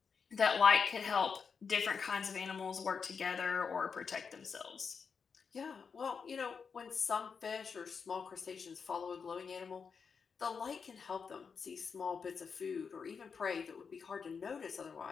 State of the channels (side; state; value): right; quieter; 5.9 dB